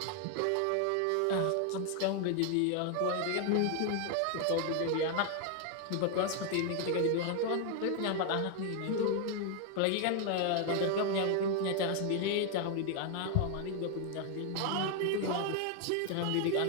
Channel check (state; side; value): different; both; correlation 0.00